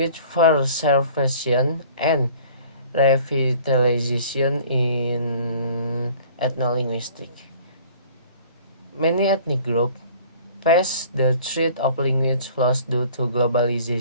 preservation and revitalization in ethnolinguistic. Many ethnic groups face the threat of language loss due to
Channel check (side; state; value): both; inverted; correlation -0.50